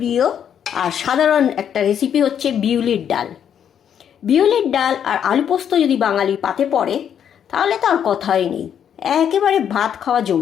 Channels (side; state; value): right; quieter; 8.8 dB